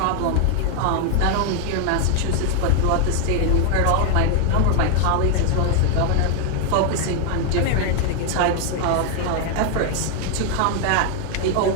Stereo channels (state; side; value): different; both; correlation 0.01